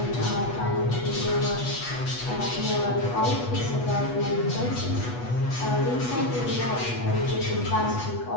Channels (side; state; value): right; late; 8.2 ms